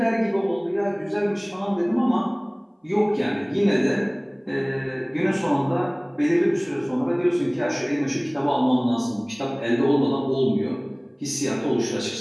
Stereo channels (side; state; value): both; identical; correlation 1.00